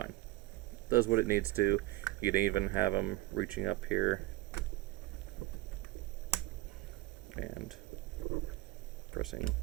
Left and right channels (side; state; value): left; quieter; 19.0 dB